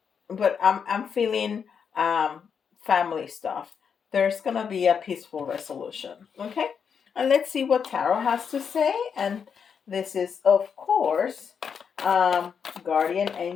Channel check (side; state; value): right; quieter; 6.8 dB